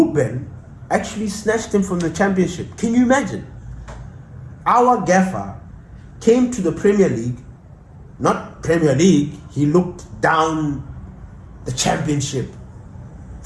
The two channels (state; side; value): identical; both; correlation 1.00